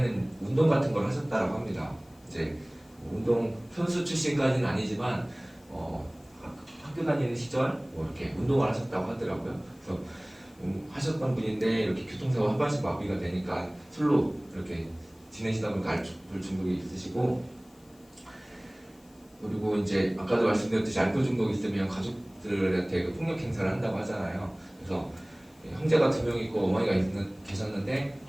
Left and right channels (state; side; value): noise; left; hiss, 30 dB below the sound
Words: 운동 같은 걸 하셨다라고 합니다. 이제 운동 선수 출신까지는 아니지만 학교 다니는 시절 이렇게 운동을 하셨다고 하더라고요. 그래서 하셨던 분인데 이렇게 교통사고 하반신 마비가 되니까 술로 이렇게 지내시다 보니까 알코올 중독이 있으시고, 그리고 이제 아까도 말씀드렸듯이 알코올 중독이 있으면 가족들한테 폭력 행사를 한다고 하잖아요. 그래서 형제가 2명 있고 어머니가 계셨는데